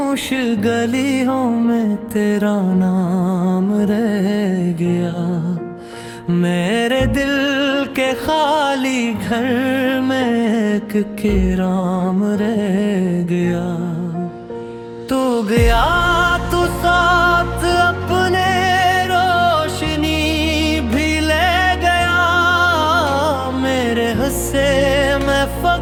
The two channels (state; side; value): identical; both; correlation 1.00